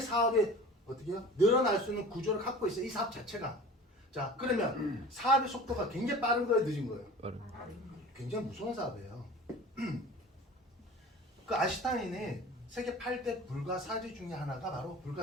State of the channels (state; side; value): normal; both; correlation 0.40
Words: 사업이 어떻게 해요? 늘어날 수 있는 구조를 갖고 있어요. 이 사업 자체가. 자, 그러면 사업의 속도가 굉장히 빠른 거예요, 늦은 거예요? 굉장히 무서운 사업이에요. 그 아인슈타인이 세계 8대 불가사의 중에 하나가 바로